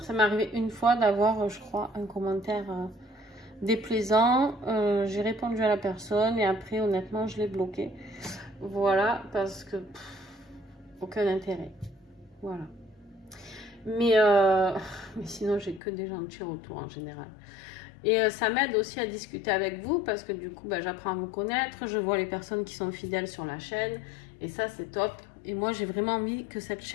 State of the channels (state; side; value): drops out; right; at 15.8 s